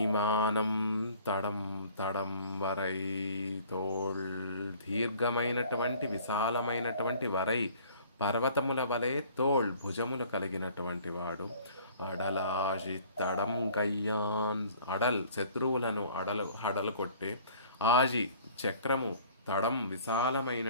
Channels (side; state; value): both; inverted; correlation -0.52